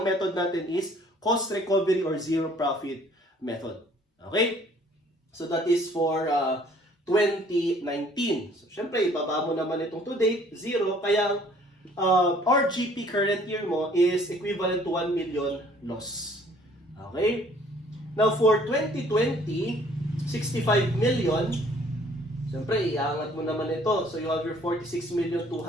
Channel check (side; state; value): both; normal; correlation 0.57